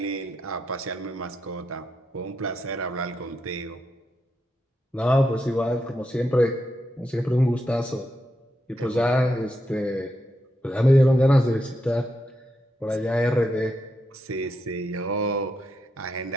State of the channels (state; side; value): normal; both; correlation 0.83